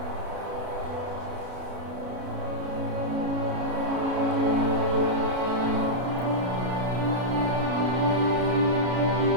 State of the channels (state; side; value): late; left; 33 ms